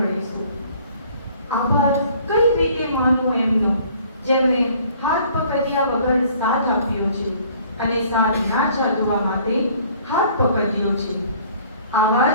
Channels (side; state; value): both; inverted; correlation -0.56